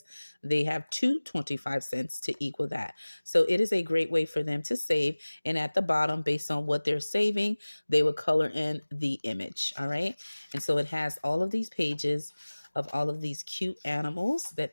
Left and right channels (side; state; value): both; inverted; correlation -1.00